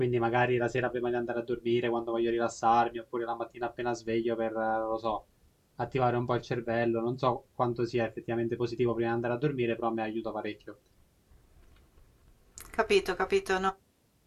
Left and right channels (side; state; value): both; identical; correlation 1.00